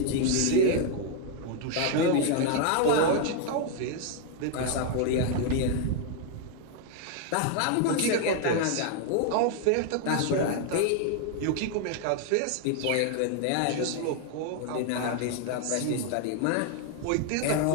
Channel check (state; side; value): different; both; correlation 0.00